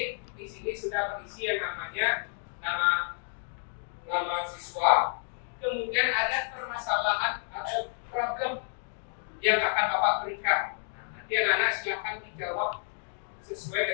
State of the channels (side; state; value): right; silent; digital silence